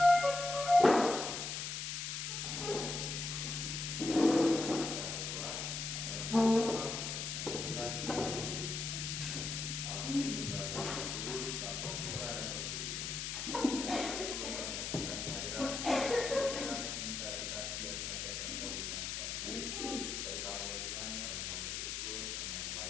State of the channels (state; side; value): noise; left; hiss, 3 dB below the sound